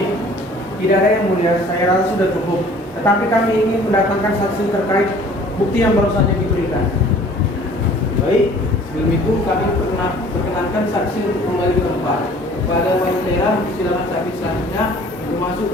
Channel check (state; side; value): normal; both; correlation 0.51